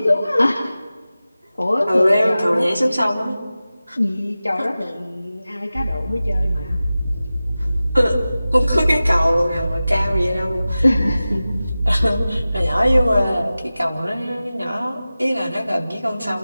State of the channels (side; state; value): both; inverted; correlation -0.96